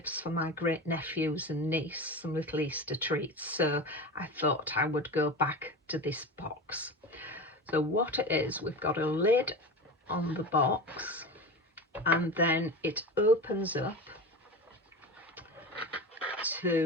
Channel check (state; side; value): normal; both; correlation 0.27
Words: for my great nephews and niece, some little Easter treats, so I thought I would go back to this box. So what it is, we've got a lid on the box, and then it opens up